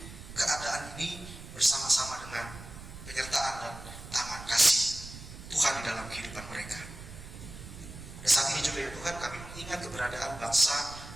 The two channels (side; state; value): right; noise; rumble, 13 dB below the sound